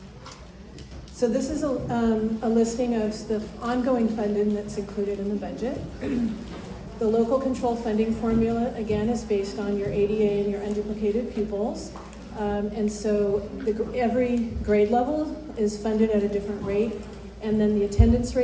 So this is a listing of the ongoing funding that's included in the budget. The local control funding formula, again, is based on your ADA and your unduplicated pupils. And so every grade level is funded at a different rate. And then the attendance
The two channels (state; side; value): identical; both; correlation 1.00